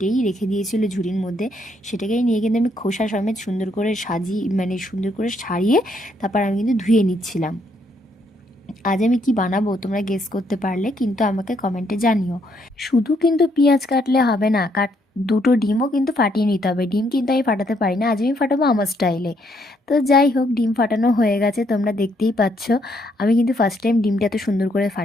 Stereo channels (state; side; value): normal; both; correlation 0.72